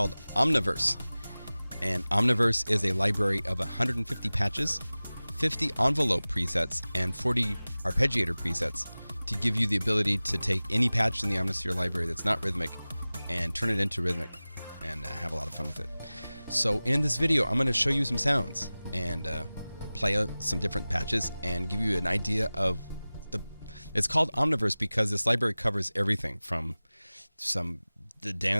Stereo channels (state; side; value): inverted; both; correlation -0.98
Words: Omniverse. And Omniverse is a library of 150 patches, 50 envelope presets, and 40 arpeggiator presets to give you the ability to take any patch in the Omnisphere library that's not rhythmic and turn it into rhythmic and have a lot of fun with it. So in this video, I'm going to show you some sounds and play some different patches and give you an idea of it's called Omniverse because this library covers everything from the